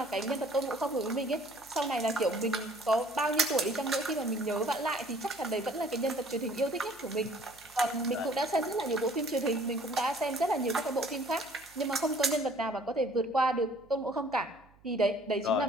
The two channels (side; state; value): right; noise; hum, 28 dB below the sound